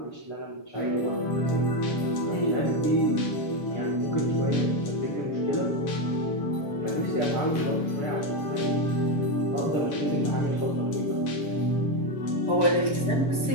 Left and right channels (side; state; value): right; late; 7.0 ms